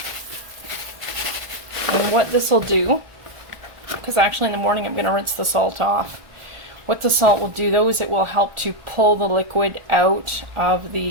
And what this will do, because actually in the morning I'm going to rinse the salt off. What the salt will do though is it will help to pull the liquid out of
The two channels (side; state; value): left; late; 1.4 ms